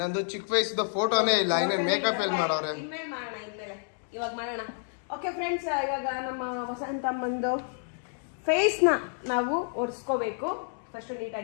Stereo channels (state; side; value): silent; right; digital silence